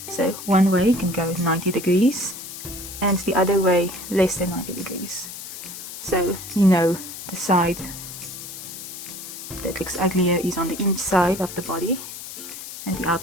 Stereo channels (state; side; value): noise; left; hiss, 11 dB below the sound